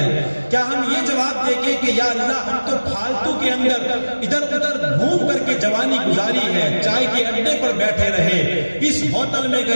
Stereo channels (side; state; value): both; inverted; correlation -1.00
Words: کیا ہم یہ جواب دیں گے کہ یا اللہ ہم تو پھالتو کے اندر ادھر ادھر گھوم کر کے جوانی گزاری ہے، چائے کے اڈے پر بیٹھے رہے، اس ہوٹل میں